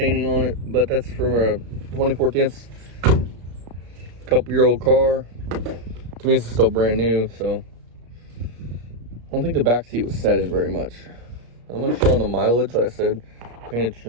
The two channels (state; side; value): late; left; 34 ms